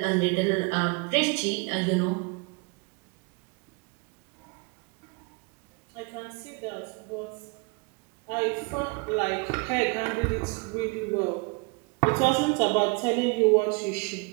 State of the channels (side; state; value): left; quieter; 30.0 dB